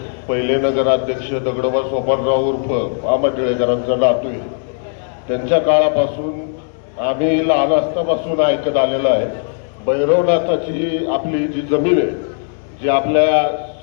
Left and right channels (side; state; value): right; silent; 62 dB below the other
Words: पहिले नगराध्यक्ष दगडोबा सोपानराव उर्फ मामा टिळेकरांचा नातू आहे. त्यांच्या काळापासून आम्ही लहान असतापासून ऐकत आलेलं आहे. भैरवनाथाची आपली जी जमीन आहे, जी आपल्या